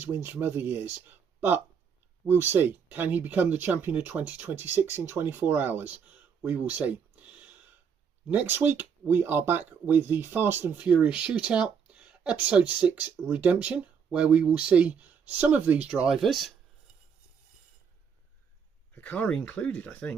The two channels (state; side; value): quieter; left; 6.7 dB